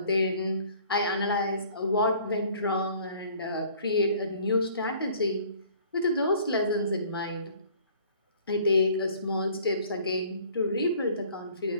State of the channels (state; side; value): inverted; both; correlation -0.54